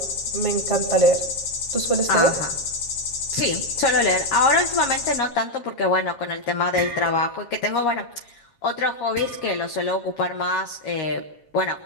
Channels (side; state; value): right; late; 7.4 ms